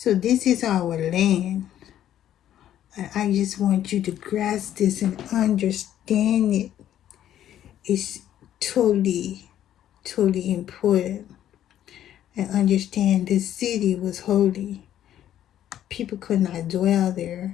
this is our land. I just want you to grasp this and understand it. It's totally, totally important. And understand this city was holy. People could not dwell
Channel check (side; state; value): right; quieter; 11.4 dB